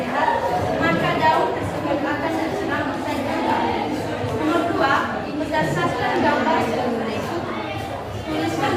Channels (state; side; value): identical; both; correlation 1.00